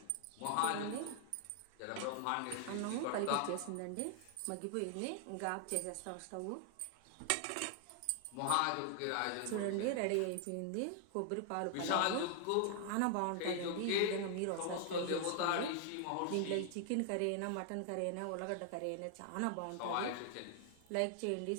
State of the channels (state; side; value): different; both; correlation 0.00